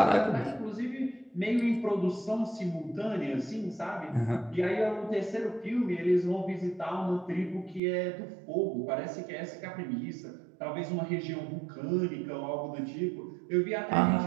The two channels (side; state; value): left; drops out; at 7.8 s